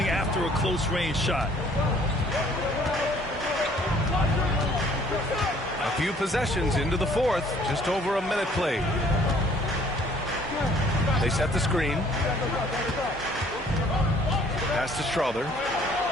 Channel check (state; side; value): normal; both; correlation 0.58